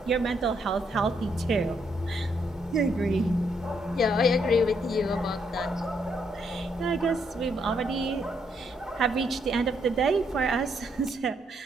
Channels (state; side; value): normal; both; correlation 0.74